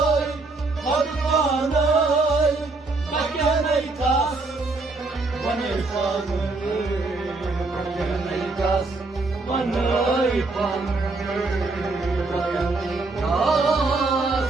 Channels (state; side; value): quieter; left; 3.5 dB